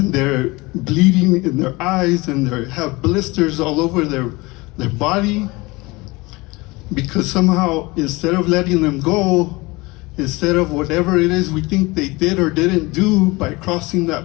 they're bleeding in their eyes, and they have blisters all over their body, because somehow, instead of letting them go, instead of whatever it is we think they did or didn't do by crossing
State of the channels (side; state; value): right; quieter; 23.2 dB